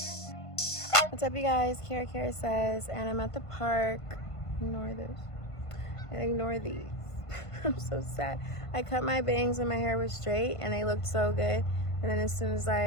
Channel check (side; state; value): right; late; 1.5 ms